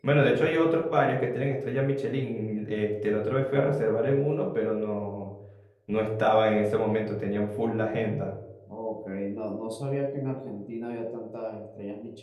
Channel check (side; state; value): both; identical; correlation 1.00